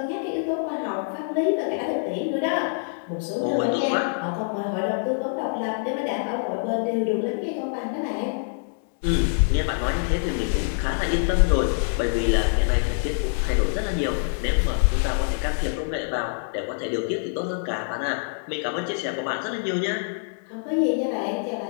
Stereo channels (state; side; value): silent; right; digital silence